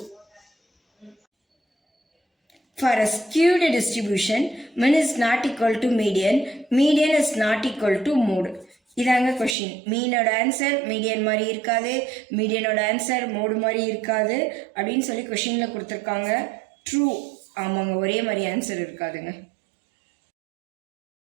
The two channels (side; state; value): left; drops out; at 9.6 s